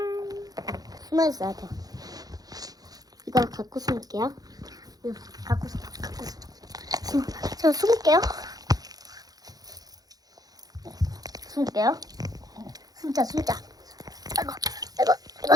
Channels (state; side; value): late; left; 0.18 ms